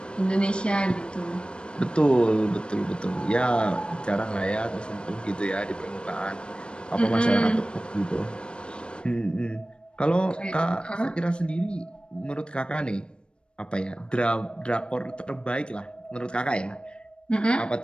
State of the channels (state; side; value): late; right; 0.055 ms